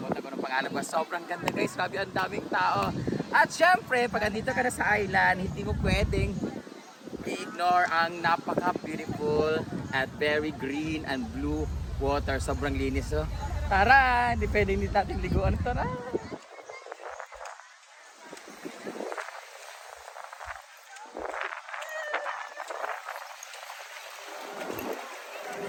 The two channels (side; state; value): both; identical; correlation 1.00